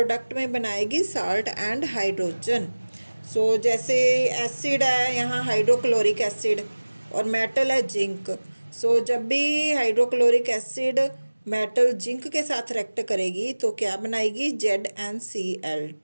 में बनाएगी साल्ट एंड हाइड्रोजन। जैसे एसिड है यहाँ हाइड्रोक्लोरिक एसिड और मेटल है जिंक। जब भी हाइड्रोक्लोरिक एसिड मेटल जिंक के साथ रिएक्ट करेगी तो क्या बनाएगी,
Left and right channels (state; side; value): inverted; both; correlation -1.00